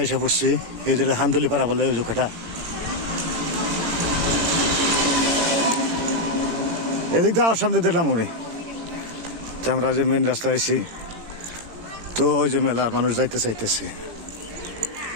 এসে পড়ছি এই যে হান্দুলিপাড়া বলে ওই জোখাটা এদিক দিয়ে আমার সামনে দিলাম উনি তো আমরা যে মেন রাস্তা আছি তো ওই যে মেলার মানুষ যাইতে চাইতেছে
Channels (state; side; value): late; left; 18 ms